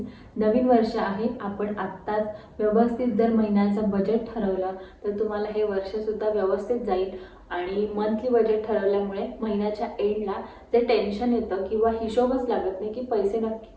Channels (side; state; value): both; identical; correlation 1.00